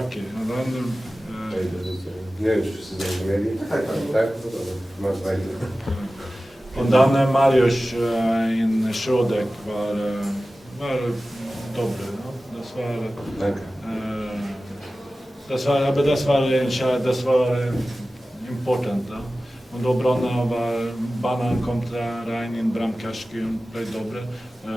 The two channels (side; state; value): both; normal; correlation 0.96